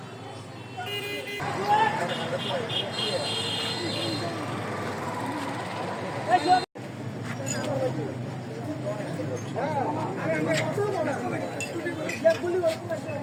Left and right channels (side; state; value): both; identical; correlation 1.00